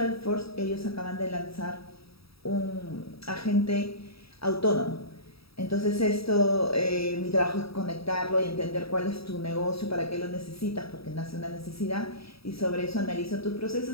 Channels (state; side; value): late; right; 0.77 ms